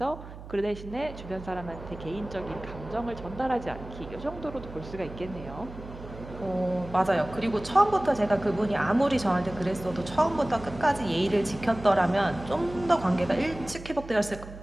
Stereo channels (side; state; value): right; noise; hum, 14 dB below the sound